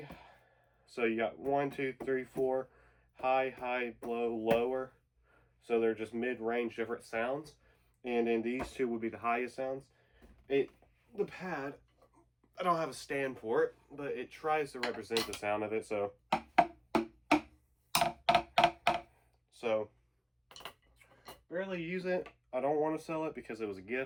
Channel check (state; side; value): identical; both; correlation 1.00